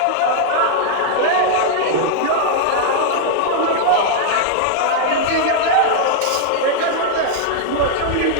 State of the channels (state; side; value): different; both; correlation -0.01